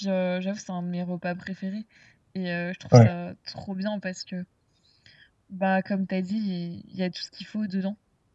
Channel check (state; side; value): identical; both; correlation 1.00